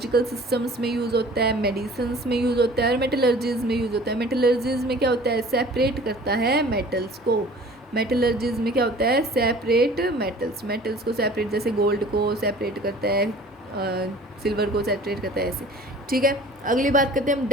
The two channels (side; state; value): both; normal; correlation 0.47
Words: सिस्टम्स में यूज़ होता है, मेडिसिन्स में यूज़ होता है, और मेटलर्जीज में यूज़ होता है। मेटलर्जीज में क्या होता है, सेपरेट करता है मेटल्स को। मेटलर्जीज में क्या होता है, सेपरेट मेटल्स को सेपरेट, जैसे गोल्ड को सेपरेट करता है, सिल्वर को सेपरेट करता है, ऐसे। ठीक है, अगली बात करते हैं हम